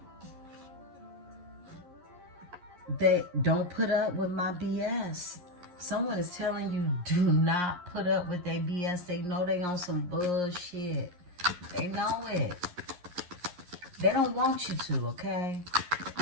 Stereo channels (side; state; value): left; late; 11 ms